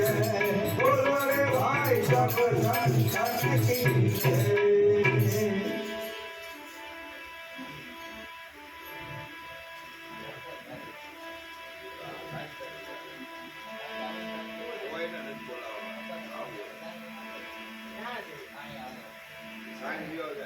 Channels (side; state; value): both; identical; correlation 1.00